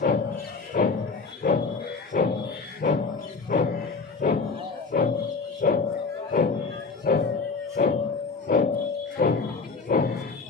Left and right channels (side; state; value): right; quieter; 4.5 dB